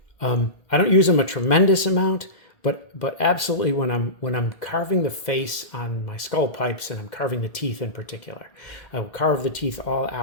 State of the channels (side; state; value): right; late; 1.8 ms